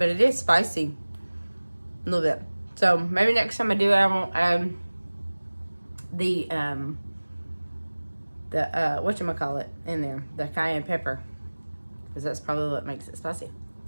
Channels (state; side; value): inverted; both; correlation -1.00